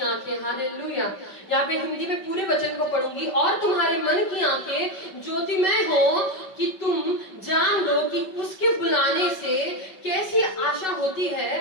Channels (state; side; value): late; right; 5.3 ms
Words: आंखें, हालेलुया। यहाँ पे हिंदी में पूरे वचन को पढ़ूंगी। और तुम्हारे मन की आंखें ज्योतिमय हो कि तुम जान लो कि उसके बुलाने से कैसी आशा होती